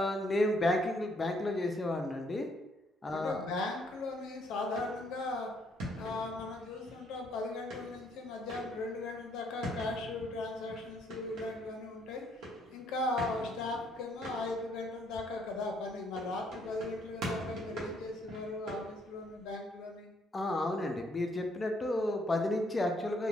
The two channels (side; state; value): both; normal; correlation 0.69